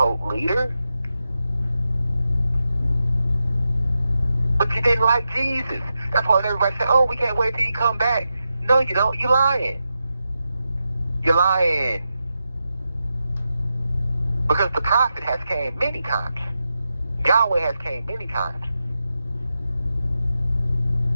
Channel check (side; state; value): both; inverted; correlation -0.89